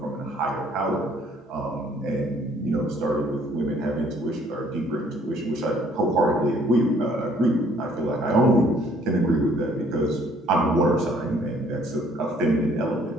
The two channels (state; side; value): normal; both; correlation 0.61